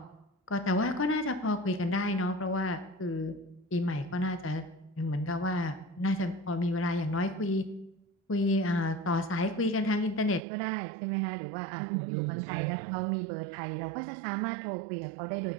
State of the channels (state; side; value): drops out; left; at 10.4 s